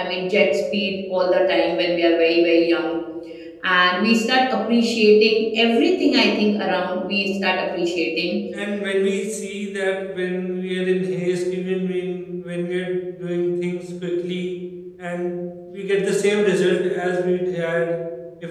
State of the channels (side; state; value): both; identical; correlation 1.00